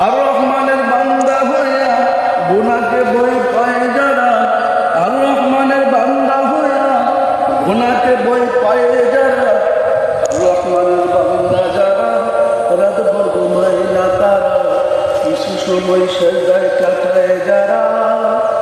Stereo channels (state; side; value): identical; both; correlation 1.00